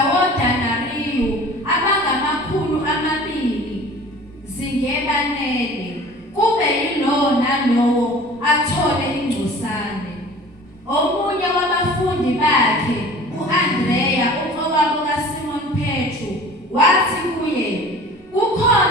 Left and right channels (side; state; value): both; normal; correlation 0.44